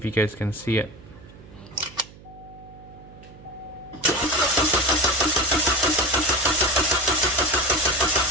you guys can see it.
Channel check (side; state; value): right; noise; hum, 21 dB below the sound